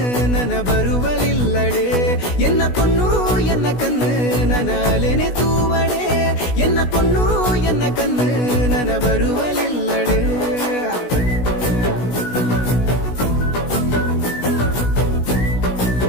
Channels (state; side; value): late; right; 16 ms